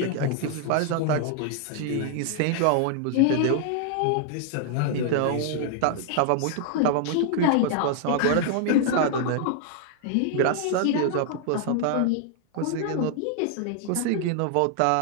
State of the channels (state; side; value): different; both; correlation 0.00